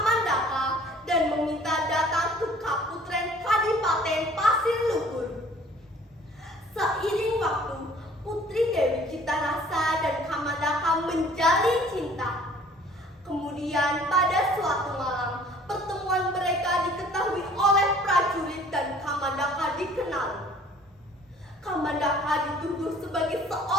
dan meminta datang ke Kaputren Kadipaten Pasir Luhur. Seiring waktu, Putri Dewi Citarasa dan Kamandaka menjalin cinta. Kemudian pada suatu malam, pertemuan mereka diketahui oleh prajurit dan Kamandaka dikenal. Kamandaka dituduh sebagai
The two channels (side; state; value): both; normal; correlation 0.53